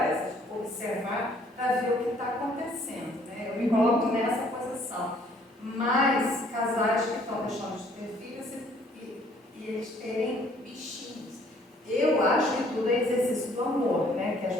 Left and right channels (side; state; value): both; normal; correlation 0.61